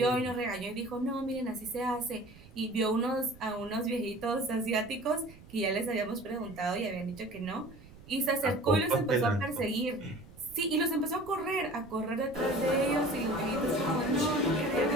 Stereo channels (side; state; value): right; noise; rumble, 21 dB below the sound